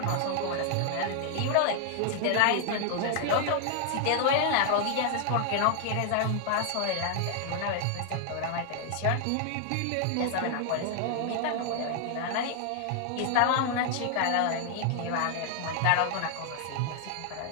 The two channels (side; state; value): both; different; correlation 0.00